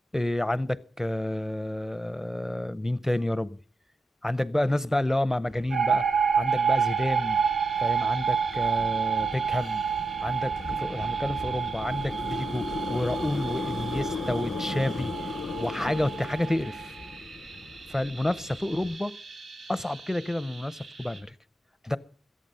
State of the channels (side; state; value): both; normal; correlation 0.87